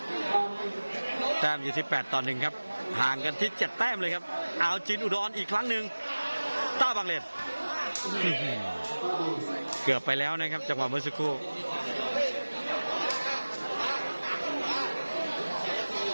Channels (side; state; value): both; inverted; correlation -1.00